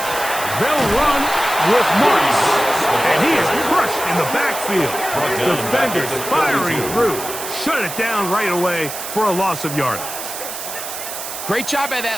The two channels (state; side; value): noise; right; hiss, 8 dB below the sound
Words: They'll run with Marks, and he is crushed in the backfield. Defenders firing through. Shut it down right away for a loss of yardage. Great job by